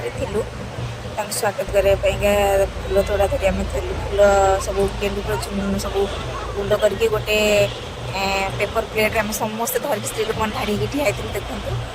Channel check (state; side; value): identical; both; correlation 1.00